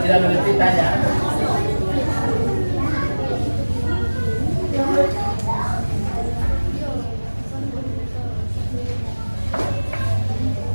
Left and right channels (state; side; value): inverted; both; correlation -1.00